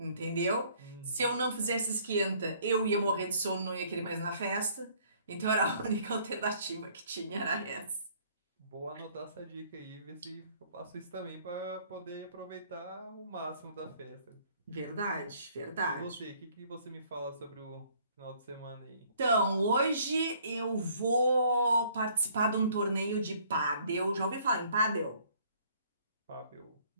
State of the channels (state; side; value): inverted; both; correlation -0.60